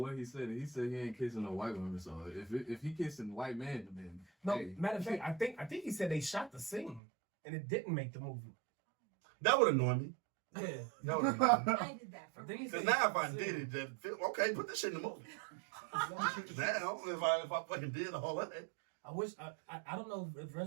he said. He said he ain't kissing no white woman. So if he kissing white man, then No, hey. matter of fact, I think he said they shot the scene and it didn't make the movie. That would annoy me. Yeah. That would annoy me. I did that for Because now if I did it, then okay, put this shit in the movie. Now if I fucking did all that. I wish I don't know if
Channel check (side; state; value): left; drops out; at 7.0 s